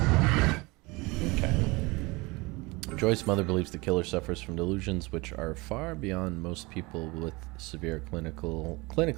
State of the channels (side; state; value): left; quieter; 24.2 dB